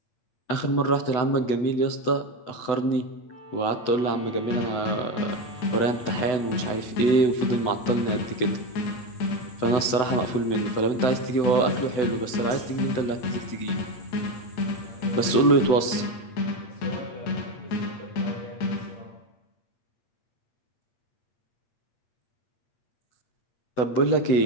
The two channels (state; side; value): late; right; 8.0 ms